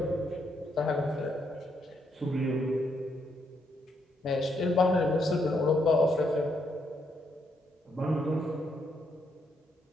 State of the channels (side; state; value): both; normal; correlation 0.76